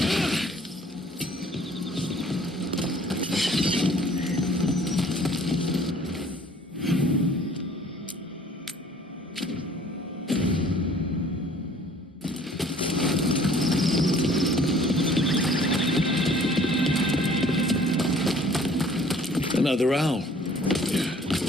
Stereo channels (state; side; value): normal; both; correlation 0.54